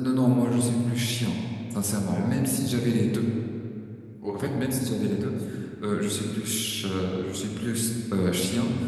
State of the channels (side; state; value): both; identical; correlation 1.00